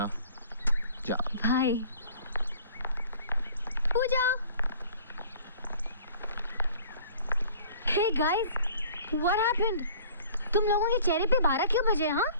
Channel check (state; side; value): inverted; both; correlation -0.50